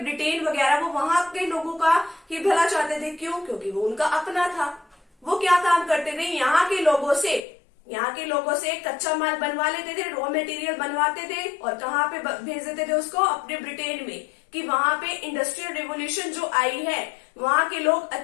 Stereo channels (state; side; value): drops out; right; at 7.4 s